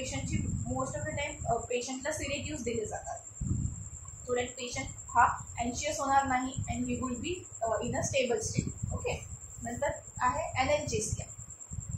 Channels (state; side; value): identical; both; correlation 1.00